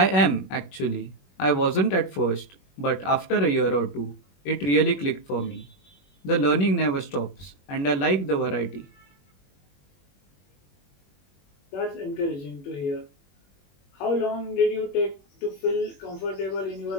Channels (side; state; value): right; late; 21 ms